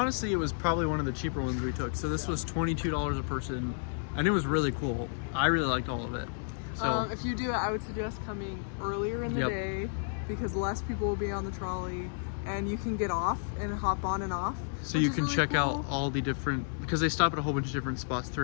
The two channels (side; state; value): right; silent; digital silence